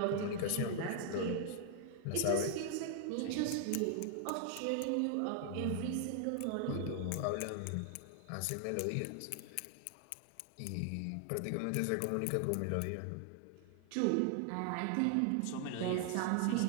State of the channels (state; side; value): different; both; correlation 0.00